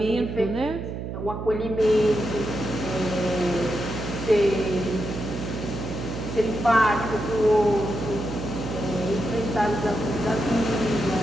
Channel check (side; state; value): right; noise; hum, 6 dB below the sound